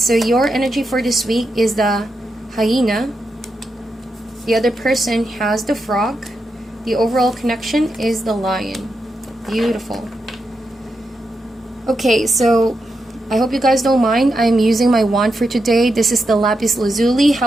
your energy for this week is the hyena. The other person has the frog. The overall connection is the lion. Beautiful. Okay, so I hope you guys don't mind. I'm using my wand for today. This is the lapis lazuli.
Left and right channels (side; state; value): both; normal; correlation 0.86